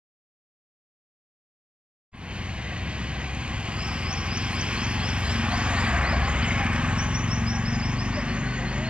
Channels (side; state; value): left; late; 0.050 ms